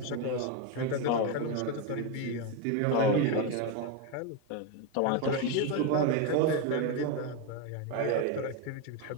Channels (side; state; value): both; different; correlation 0.03